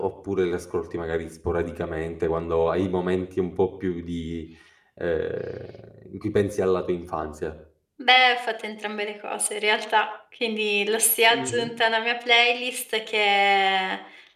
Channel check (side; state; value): both; identical; correlation 1.00